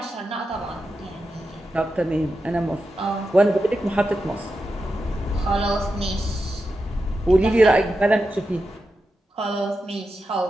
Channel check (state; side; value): normal; both; correlation 0.89